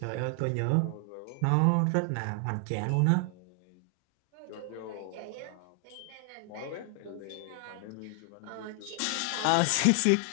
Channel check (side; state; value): both; different; correlation 0.00